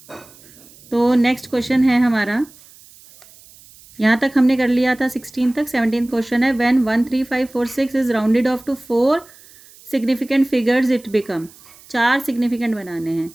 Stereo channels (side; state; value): right; noise; hiss, 24 dB below the sound